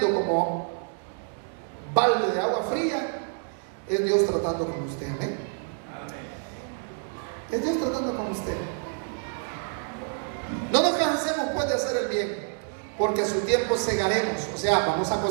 como balde de agua fría, es Dios tratando con usted. ¿eh? Es Dios tratando con usted. No nos cansemos pues de hacer el bien, porque a su tiempo segaremos. O sea, vamos a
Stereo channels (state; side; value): silent; left; 60 dB below the other